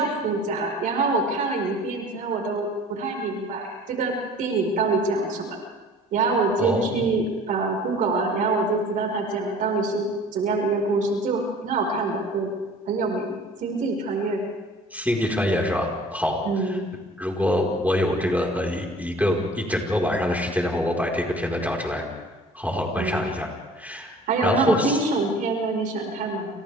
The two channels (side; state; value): both; normal; correlation 0.47